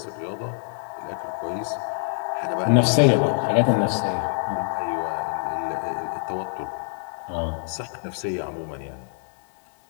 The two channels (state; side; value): silent; right; digital silence